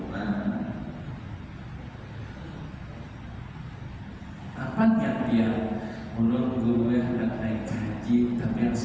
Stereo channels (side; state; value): both; identical; correlation 1.00